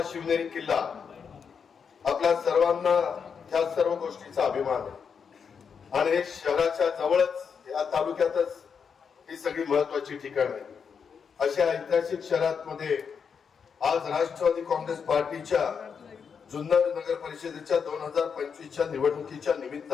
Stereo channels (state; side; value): quieter; right; 6.4 dB